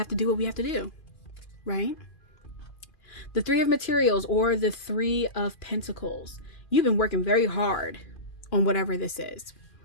to do what we have to do, right? The 3 of materials, or the 3 of pentacles. You've been working very hard on whatever this is,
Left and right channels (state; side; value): late; right; 2.4 ms